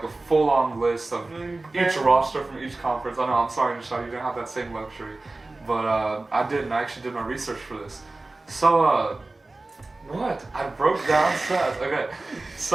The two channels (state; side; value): quieter; left; 3.1 dB